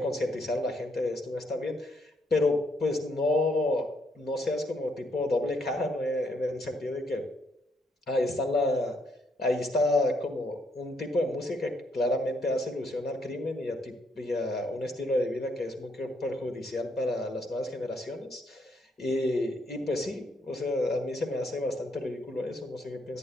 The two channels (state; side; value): normal; both; correlation 0.73